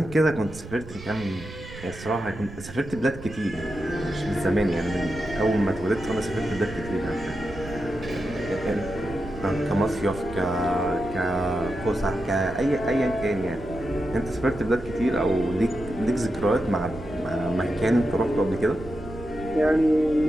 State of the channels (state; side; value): noise; right; rumble, 14 dB below the sound